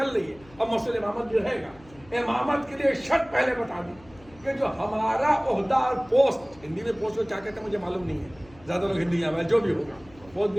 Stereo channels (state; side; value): noise; left; hum, 25 dB below the sound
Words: رہی ہے، اب مسئلہ امامت جو رہے گا. امامت کے لیے شرط پہلے بتا دی کہ جو ہمارا عہدہ اور پوسٹ، ہندی میں پوسٹ کو کیا کہتے ہیں مجھے معلوم نہیں ہے، زیادہ لوگ ہندی میں جو بھی ہوگا پوسٹ